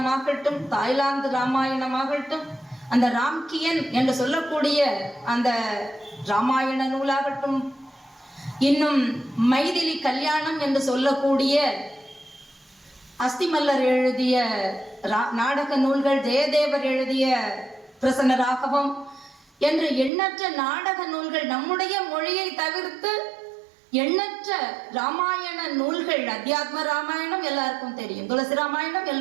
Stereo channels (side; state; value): left; drops out; at 20.1 s